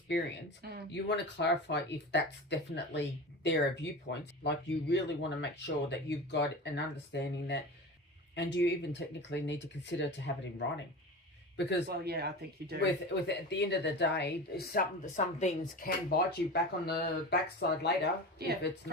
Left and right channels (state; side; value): normal; both; correlation 0.30